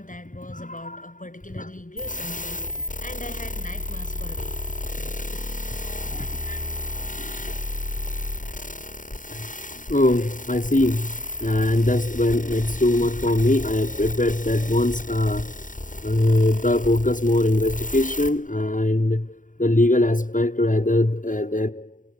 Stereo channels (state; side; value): late; right; 0.38 ms